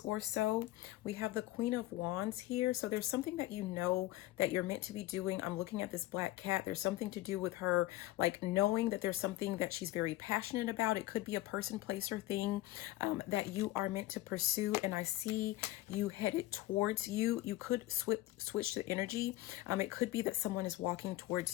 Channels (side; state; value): right; quieter; 16.7 dB